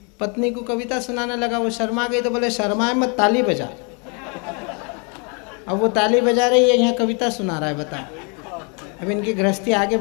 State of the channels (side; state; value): right; quieter; 34.8 dB